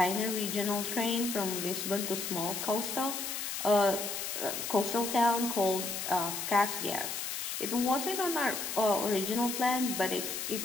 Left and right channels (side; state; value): left; noise; hiss, 4 dB below the sound